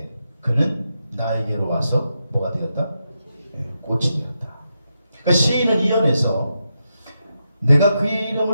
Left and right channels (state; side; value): inverted; both; correlation -0.86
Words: 그는 나에게로 와서 뭐가 되었다? 꽃이 되었다. 그러니까 시인은 이 연에서 내가 그의